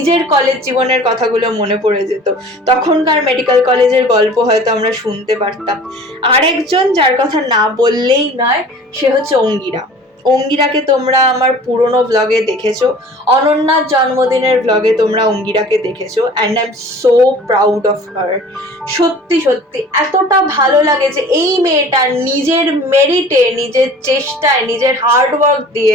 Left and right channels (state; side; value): normal; both; correlation 0.45